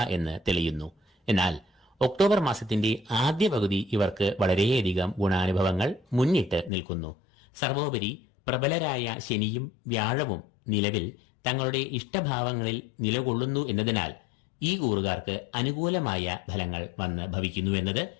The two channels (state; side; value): drops out; right; at 6.7 s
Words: എന്ന് തെളിയുന്നു. എന്നാൽ ഒക്ടോബർ മാസത്തിന്റെ ആദ്യ പകുതി ഇവർക്ക് വളരെയധികം ഗുണാനുഭവങ്ങൾ മുന്നിട്ട് നിൽക്കുന്നു. സർവോപരി പ്രബലരായ ശനിയും വ്യാഴവും നിലവിൽ തങ്ങളുടെ ഇഷ്ടഭാവങ്ങളിൽ നിലകൊള്ളുന്നു എന്നതിനാൽ ഈ കൂറുകാർക്ക് അനുകൂലമായ ഫലങ്ങൾ വന്ന് ഭവിക്കുന്നു എന്നത്